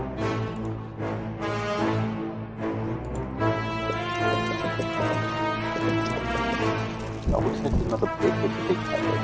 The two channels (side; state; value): both; identical; correlation 1.00